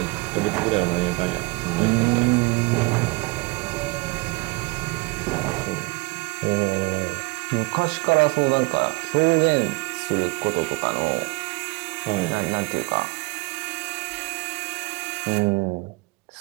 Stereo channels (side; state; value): left; quieter; 25.4 dB